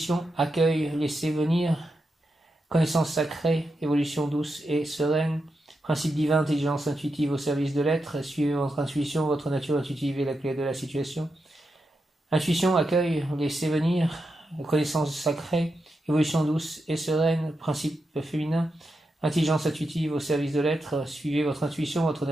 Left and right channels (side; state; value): both; normal; correlation 0.87